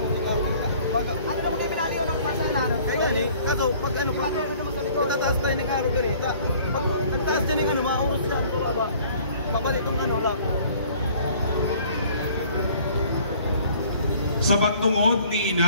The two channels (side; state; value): both; inverted; correlation -0.54